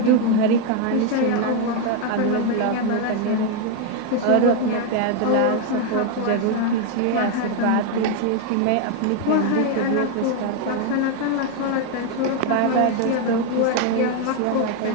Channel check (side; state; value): both; different; correlation 0.01